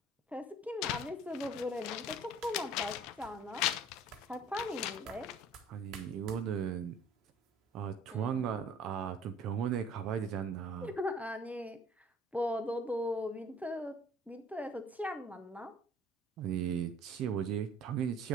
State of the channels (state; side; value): normal; both; correlation 0.50